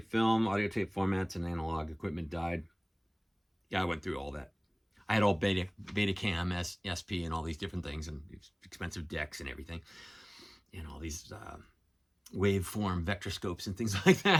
film, audio tape formats, and analog equipment died. Yeah, I went through all that. I had all Betacam, SP, and all these different things, and expensive decks and everything, and all these waveform vectorscopes and things like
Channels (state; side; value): identical; both; correlation 1.00